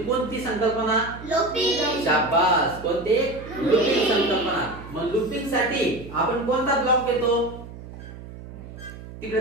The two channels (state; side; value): noise; right; hum, 14 dB below the sound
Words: संकल्पना? लूपिंग. शाबास. कोणती? लूपिंग संकल्पना. मग लूपिंग साठी आपण कोणता ब्लॉक घेतो?